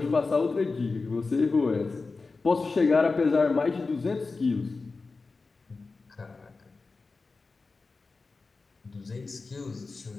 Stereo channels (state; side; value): quieter; right; 4.0 dB